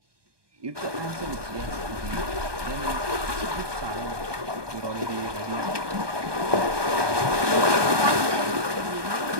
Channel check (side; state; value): left; late; 1.2 ms